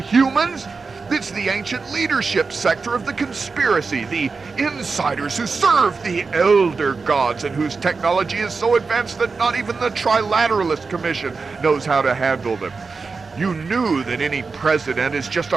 It's the ancient leadership sector of the conspiracy, the insiders who serve the elder gods and whose technology is so advanced that not even the Trilateralist Commission knows how to handle them. You knew that any president is just a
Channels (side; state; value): left; quieter; 4.5 dB